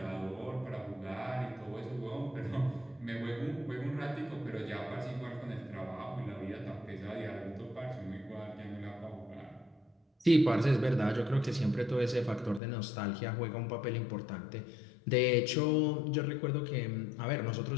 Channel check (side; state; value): right; drops out; at 12.6 s